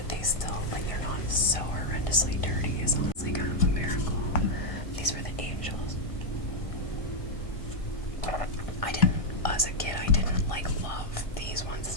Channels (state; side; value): late; right; 1.7 ms